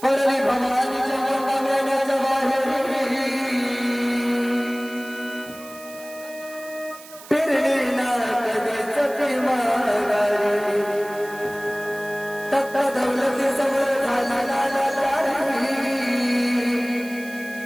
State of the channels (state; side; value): noise; right; hiss, 18 dB below the sound